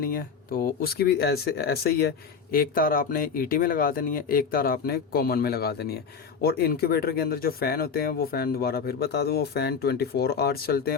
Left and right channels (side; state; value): right; quieter; 6.1 dB